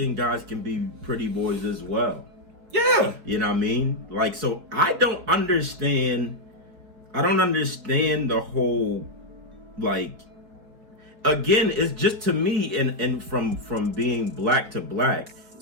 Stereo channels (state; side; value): late; left; 4.5 ms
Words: guys can be pretty boys as well. Yeah. You know what I mean? Like, so I don't understand the whole, like, again, it's just to me, and from being black to black,